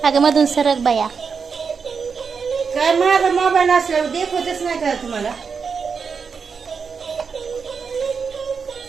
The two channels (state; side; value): quieter; left; 5.7 dB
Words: अगं मधून सरक बाया काय माझा मोबाईल असल्यावर देखवतच नाही का तुम्हाला